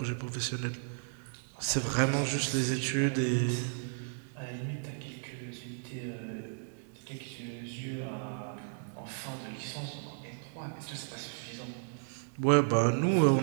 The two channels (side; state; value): left; silent; digital silence